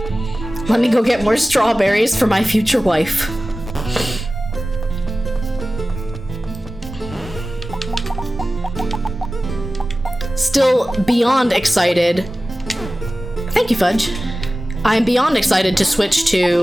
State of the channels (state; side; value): normal; both; correlation 0.96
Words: Let me go get more strawberries for my future wife. Still beyond excited. Thank you, Fudge. I'm beyond excited to switch